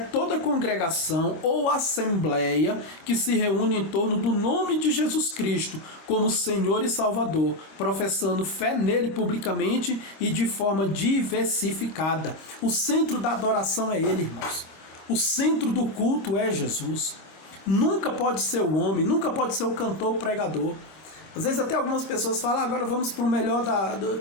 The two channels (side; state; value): right; late; 26 ms